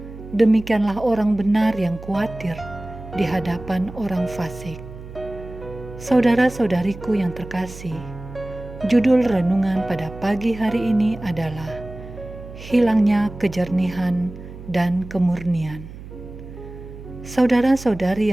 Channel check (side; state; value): right; noise; hum, 14 dB below the sound